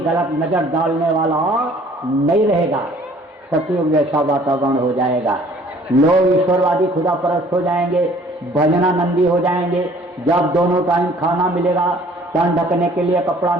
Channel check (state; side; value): normal; both; correlation 0.55